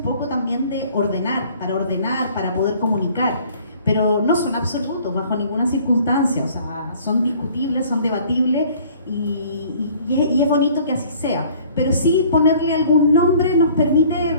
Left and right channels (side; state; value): both; inverted; correlation -0.53